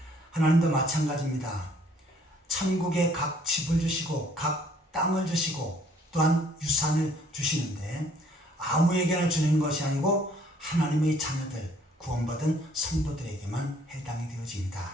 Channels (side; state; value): both; normal; correlation 0.61